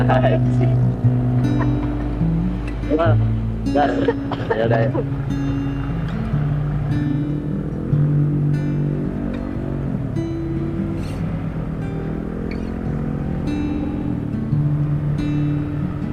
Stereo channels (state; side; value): identical; both; correlation 1.00